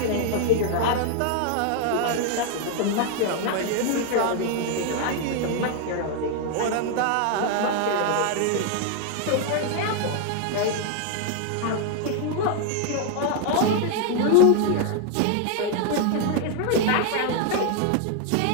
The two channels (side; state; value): both; different; correlation 0.00